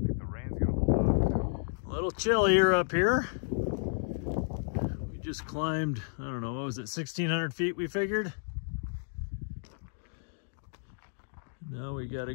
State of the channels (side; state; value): right; silent; digital silence